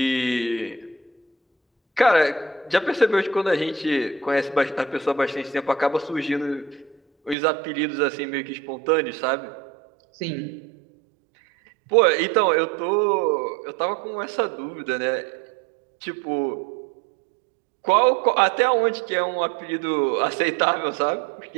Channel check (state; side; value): drops out; left; at 7.4 s